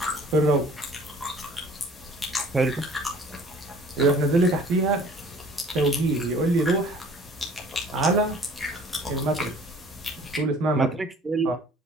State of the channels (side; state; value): both; normal; correlation 0.51